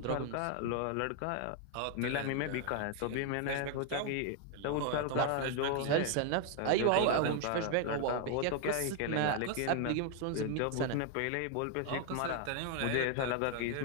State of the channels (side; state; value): both; different; correlation 0.00